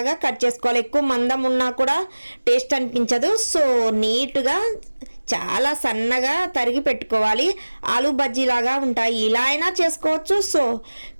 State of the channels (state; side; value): inverted; both; correlation -1.00